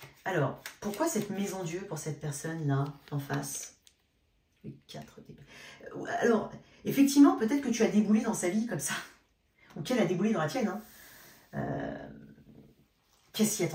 Alors, pourquoi cette maison Dieu pour cette personne-là, en face? 4 d'épée. Alors, effectivement, peut-être que tu as déboulé dans sa vie comme ça. Ou qu'elle a déboulé dans la tienne. Hein. Qu'elle s'y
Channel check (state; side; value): identical; both; correlation 1.00